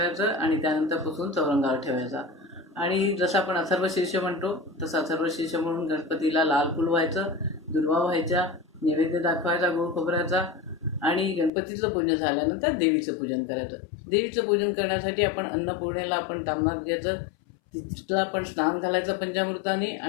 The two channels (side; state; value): right; drops out; at 11.5 s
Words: आणि त्यानंतर पुसून चौरंगावर ठेवायचा. आणि जसं आपण अथर्वशीर्ष म्हणतो तसं अथर्वशीर्ष म्हणून गणपतीला लाल फूल व्हायचं, दुर्वा व्हायच्या, नैवेद्य दाखवायचा गोड खोबऱ्याचा. आणि गणपतीचं पूजन झाल्यानंतर देवीचं पूजन करायचं. देवीचं पूजन करण्यासाठी आपण अन्नपूर्णेला आपण तामणात घ्यायचं, तिला आपण स्नान घालायचं पंचामृताने